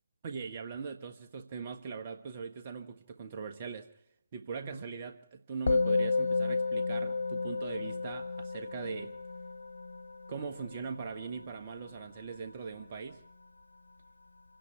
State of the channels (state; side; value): inverted; both; correlation -0.87